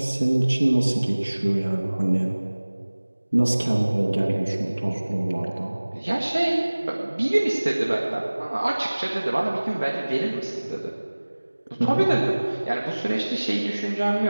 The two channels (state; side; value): inverted; both; correlation -1.00